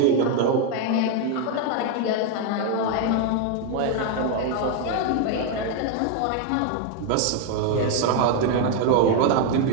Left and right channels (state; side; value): different; both; correlation 0.01